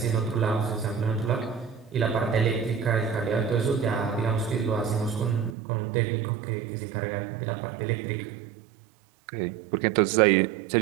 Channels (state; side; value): drops out; left; at 5.6 s